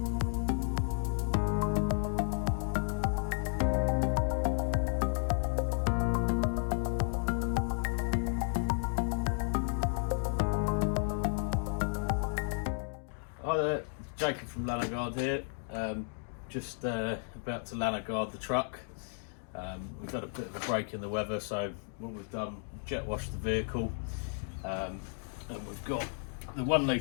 Hi there, Jacob from Lanoguard here. Just about to Lanoguard the truck. We've had a bit of a break in the weather, so what we've done, jet washed the vehicle, and we've got the 1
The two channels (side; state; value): right; silent; digital silence